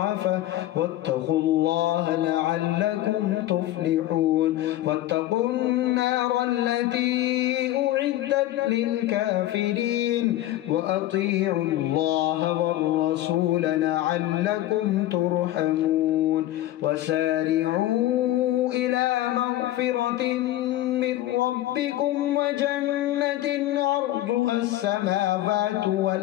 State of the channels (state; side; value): quieter; right; 14.5 dB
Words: واتقوا الله لعلكم تفلحون. واتقوا النار التي أعدت للكافرين وأطيعوا الله والرسول لعلكم ترحمون. وسارعوا إلى مغفرة من ربكم وجنة عرضها السماوات